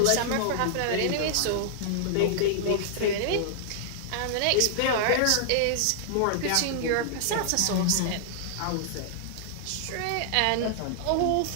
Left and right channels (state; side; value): different; both; correlation -0.01